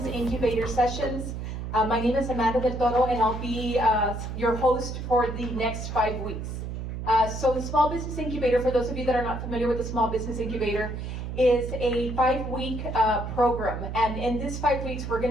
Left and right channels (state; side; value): noise; right; hum, 6 dB below the sound